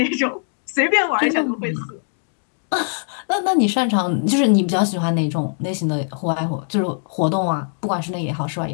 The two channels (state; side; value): silent; right; 65 dB below the other